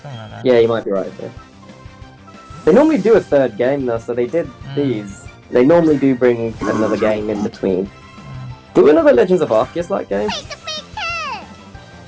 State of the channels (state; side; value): identical; both; correlation 1.00